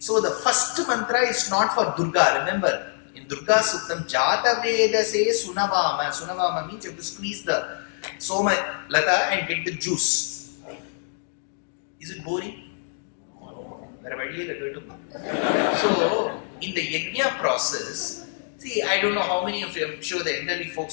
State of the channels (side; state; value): right; silent; digital silence